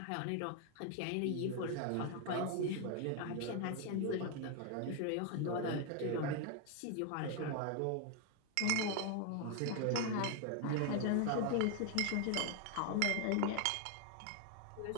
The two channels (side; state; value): both; different; correlation 0.01